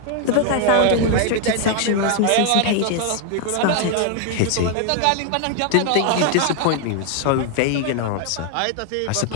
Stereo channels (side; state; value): both; different; correlation 0.00